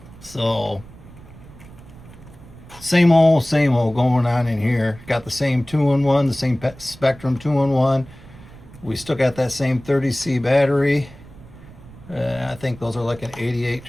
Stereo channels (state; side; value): noise; right; rumble, 20 dB below the sound